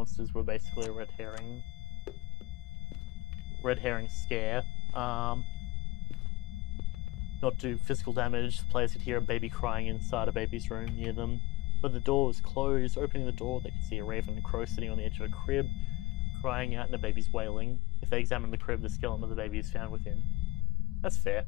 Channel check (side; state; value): right; quieter; 20.7 dB